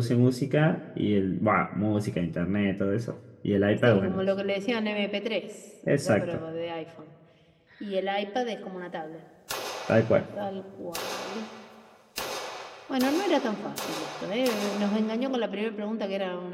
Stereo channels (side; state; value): both; identical; correlation 1.00